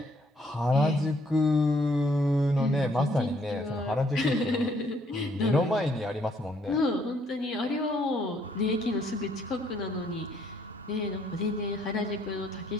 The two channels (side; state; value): both; normal; correlation 0.67